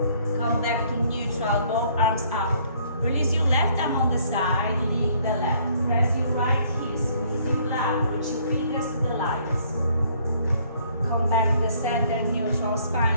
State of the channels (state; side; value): inverted; both; correlation -0.63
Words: Come back to neutral. Both arms up. Release your left arm on the side. Lean to the left. Press your right heel. Squeeze your blood. Reach your fingers to the lights. Come back to the center, neutral